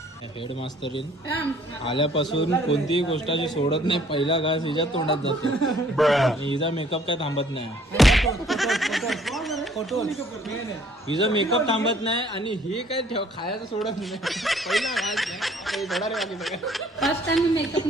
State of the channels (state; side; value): normal; both; correlation 0.59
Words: हेडमास्टरीन आल्यापासून कोणतीही गोष्टाची सोडत नाही. पहिला घास हिच्या तोंडात जातो. हिचा मेकअप काय थांबत नाही. हिचा मेकअप थांबत नाही आणि ही काय खायचं सोडत नाही. पहिला घास थोडा रे बाकी सगळं. फर्स्ट टाइम मी मेकअप